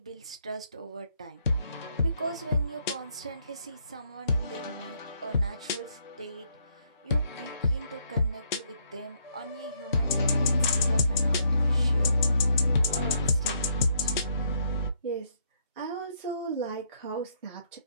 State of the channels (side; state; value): both; inverted; correlation -0.72